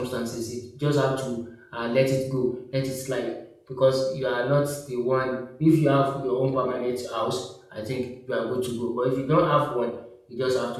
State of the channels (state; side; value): identical; both; correlation 1.00